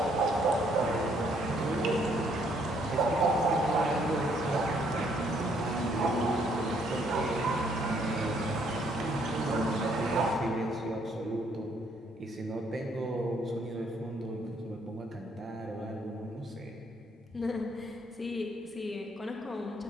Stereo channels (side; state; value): both; normal; correlation 0.68